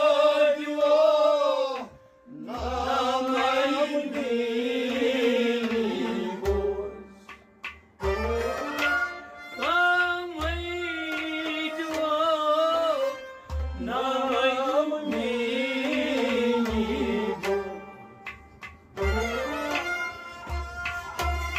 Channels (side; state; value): both; identical; correlation 1.00